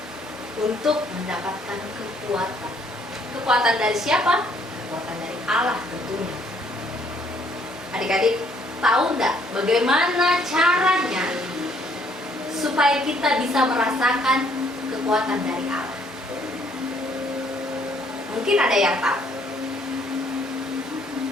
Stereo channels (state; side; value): normal; both; correlation 0.65